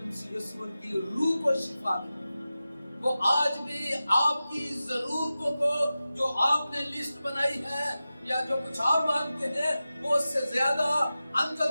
مسیح یسوع ان کی روح کو شفا دے۔ وہ آج بھی آپ کی ضرورتوں کو جو آپ نے لسٹ بنائی ہے یا جو کچھ آپ مانگتے ہیں وہ اس سے زیادہ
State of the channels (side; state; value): both; inverted; correlation -0.94